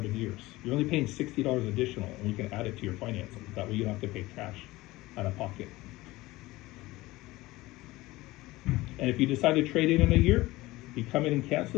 years. You're only paying $60 additional, and we can add it to your financing. That way you don't have to pay cash out of pocket. And if you decide to trade it in a year, you come in and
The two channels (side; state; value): right; quieter; 19.2 dB